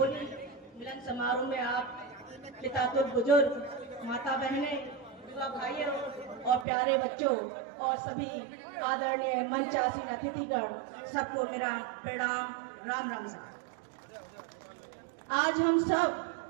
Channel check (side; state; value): left; drops out; at 6.7 s